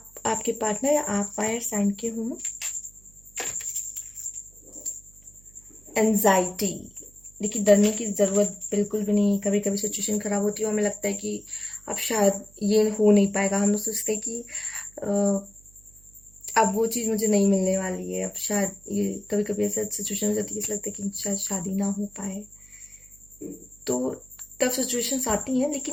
पार्टनर या आप फायर साइन के हों। एंजाइटी, देखिए डरने की ज़रूरत बिल्कुल भी नहीं। कभी कभी सिचुएशन ख़राब होती है और हमें लगता है कि अब शायद ये हो नहीं पाएगा। हम लोग सोचते हैं कि अब वो चीज़ मुझे नहीं मिलने वाली है, अब शायद ये कभी कभी ऐसा सिचुएशन हो जाती है, ऐसा लगता है कि शायद शादी ना हो पाए। तो टफ सिचुएशंस आती हैं,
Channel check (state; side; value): noise; right; hum, 26 dB below the sound